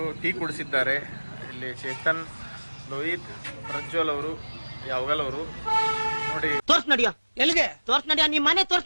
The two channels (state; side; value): inverted; both; correlation -1.00